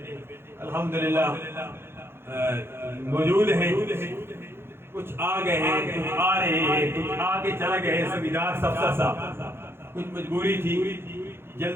الحمدللہ موجود ہیں، کچھ آ گئے ہیں، کچھ آ رہے ہیں، کچھ آ کے چلے گئے، سبیدار سفسر صاحب کچھ مجبوری تھی،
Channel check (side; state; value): left; late; 0.11 ms